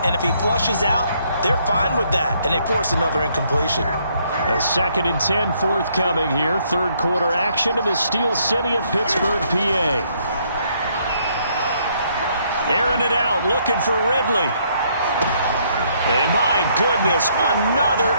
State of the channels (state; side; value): inverted; both; correlation -0.69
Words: and if he flushes out, they're fine with that, and they force another incompletion. A 2nd and 10 forthcoming here. 3rd quarter action in the Steel City of Pittsburgh, PA. Airing it out, looking for Ridley. And my goodness, another